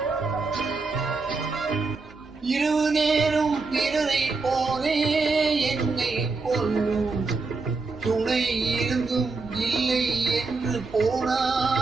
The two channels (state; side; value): quieter; left; 4.1 dB